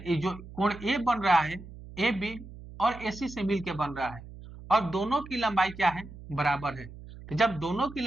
जो कोण ए बन रहा है, ए बी और एसी से मिलकर बन रहा है और दोनों की लंबाई क्या है, बराबर है। तो जब दोनों की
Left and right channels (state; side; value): noise; right; hum, 15 dB below the sound